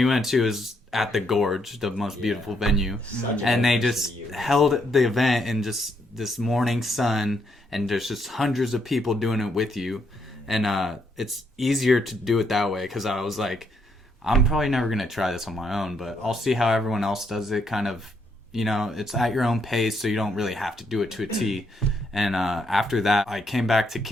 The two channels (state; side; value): normal; both; correlation 0.75